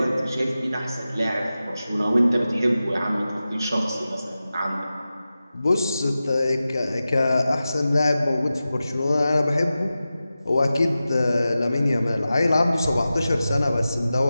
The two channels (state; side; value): inverted; both; correlation -0.94